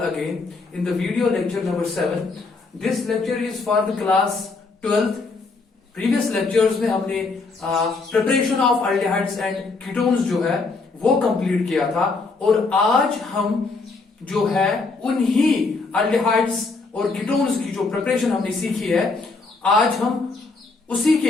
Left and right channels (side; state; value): right; quieter; 4.0 dB